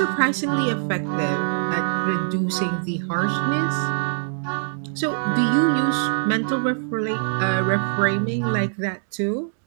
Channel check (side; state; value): left; silent; 63 dB below the other